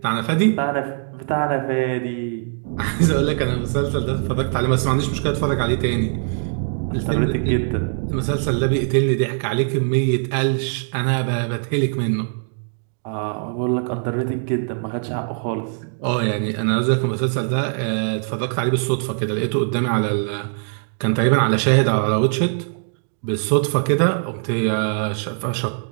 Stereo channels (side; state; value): left; silent; digital silence